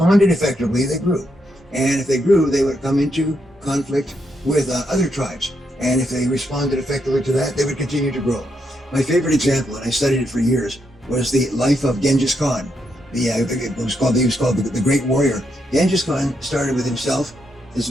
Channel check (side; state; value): both; normal; correlation 0.80